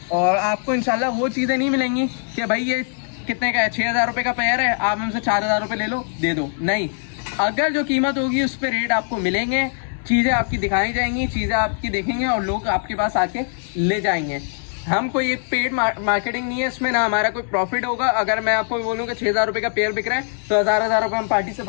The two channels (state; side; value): silent; right; 65 dB below the other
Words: और आपको इंशाल्लाह वो चीज़ें नहीं मिलेंगी कि भाई ये कितने का है, 6,000 रुपये का पेयर है, आप हमसे 4,000 रुपये ले लो दे दो। नहीं, अगर जो कीमत होगी उस पर रेट आपको मिलेंगे, चीज़ें आपकी दिखाई जाएंगी, चीज़ें आपकी देखेंगे और लोग आपके पास आके ले जाएंगे। हम कोई एक पेड मार्केटिंग नहीं है इसमें, ना हमारा कोई प्रॉफिट होगा। अगर मैं आपको बोलूँ कि 6,000 रुपये का पेयर बिक रहा है तो 1,000 रुपये हम पार्टी से